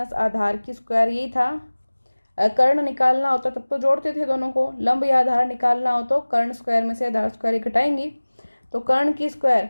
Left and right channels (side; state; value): both; inverted; correlation -1.00